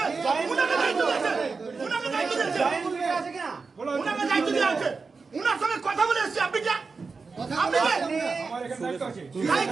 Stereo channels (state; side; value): quieter; left; 4.5 dB